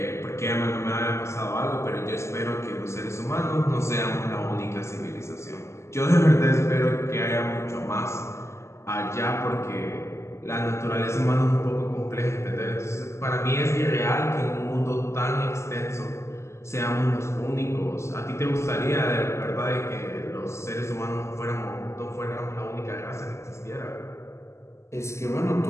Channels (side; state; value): right; late; 0.13 ms